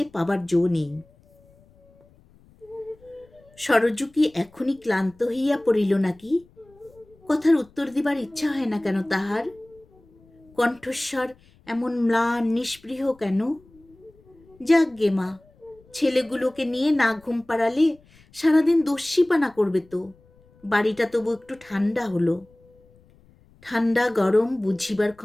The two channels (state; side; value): noise; left; rumble, 29 dB below the sound